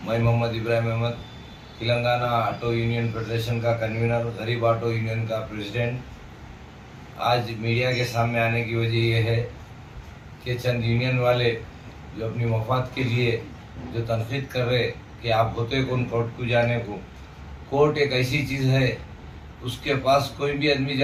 मैं Mohammed Ibrahim Ahmed, Telangana auto union federation का कन्वीनर, गरीब ऑटो यूनियन का प्रेसिडेंट। आज मीडिया के सामने आने की वजह यह है कि चंद यूनियन वाले जो अपनी मफाद के लिए जो तनकीद कर रहे कि आप होते कौन कोर्ट को जाने को। कोर्ट एक ऐसी चीज़ है, उसके पास कोई भी आदमी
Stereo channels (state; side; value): identical; both; correlation 1.00